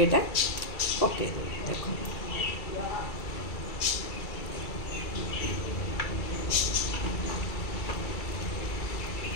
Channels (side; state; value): right; late; 2.3 ms